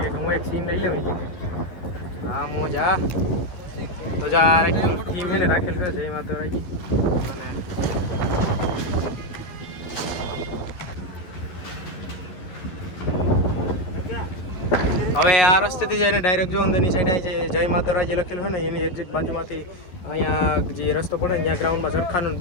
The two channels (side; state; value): right; late; 11 ms